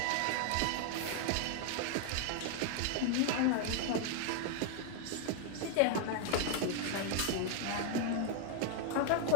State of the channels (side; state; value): both; different; correlation 0.00